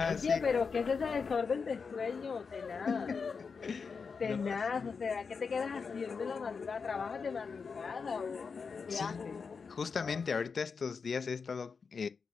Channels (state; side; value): quieter; right; 5.3 dB